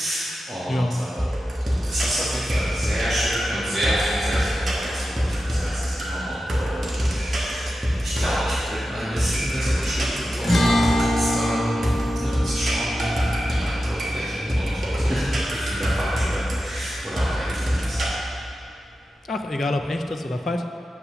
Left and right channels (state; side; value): normal; both; correlation 0.92